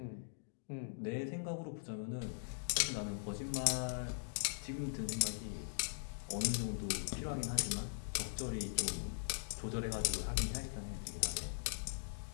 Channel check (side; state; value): right; silent; digital silence